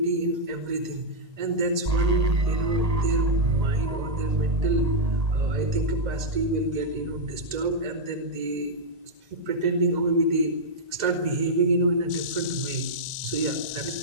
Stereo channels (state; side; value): late; left; 2.0 ms